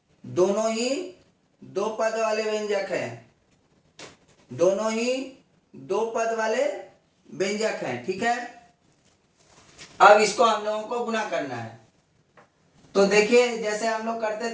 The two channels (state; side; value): identical; both; correlation 1.00